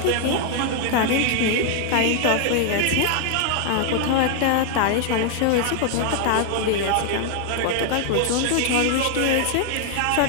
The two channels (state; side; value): different; both; correlation 0.00